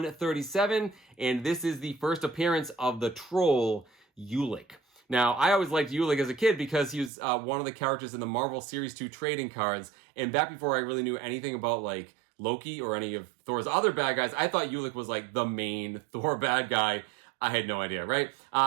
and this is the first appearance of the troll Ulik. Now, I always liked Ulik as a kid because he was one of the characters in the Marvel Series 2 trading cards, and back before I really knew anything about, like, Loki or any of Thor's other bad guys, I thought Ulik was, like, the main Thor bad guy. I had no idea, right?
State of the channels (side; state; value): left; drops out; at 7.1 s